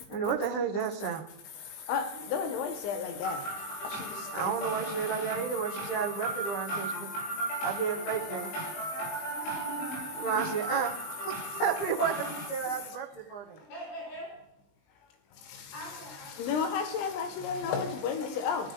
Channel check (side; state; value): right; late; 20 ms